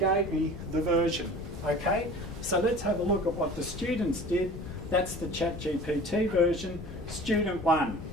gave me the version, okay? So let's have a look at what the students did. That's the ChatGPT version. Student 1.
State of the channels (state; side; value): noise; left; rumble, 12 dB below the sound